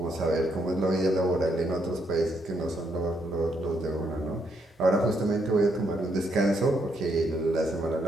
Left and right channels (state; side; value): normal; both; correlation 0.75